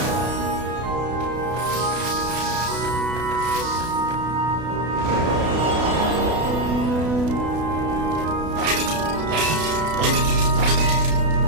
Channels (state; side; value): late; left; 32 ms